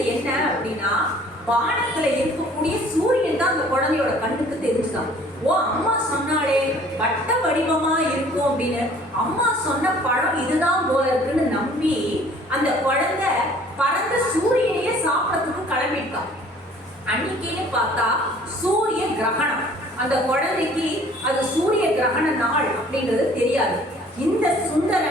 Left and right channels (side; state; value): both; normal; correlation 0.53